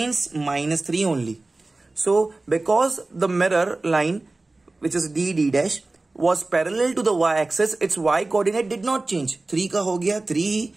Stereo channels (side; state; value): left; quieter; 3.2 dB